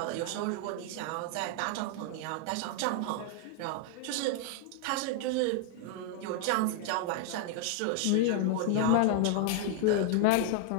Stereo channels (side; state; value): both; different; correlation 0.00